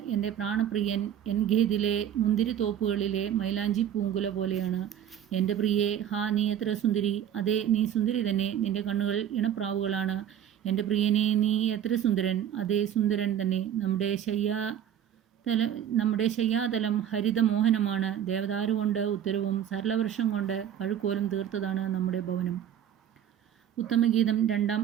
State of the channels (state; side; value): quieter; left; 9.9 dB